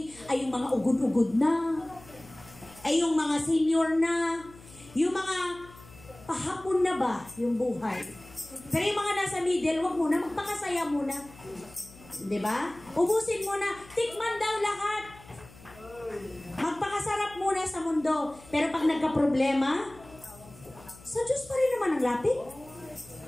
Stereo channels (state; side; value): noise; left; hum, 21 dB below the sound